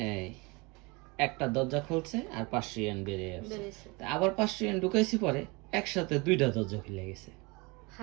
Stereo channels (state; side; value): quieter; left; 26.5 dB